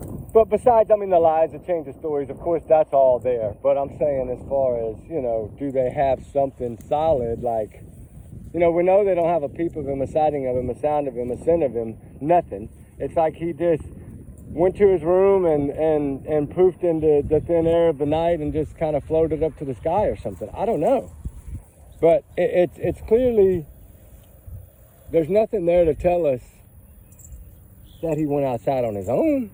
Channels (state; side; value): identical; both; correlation 1.00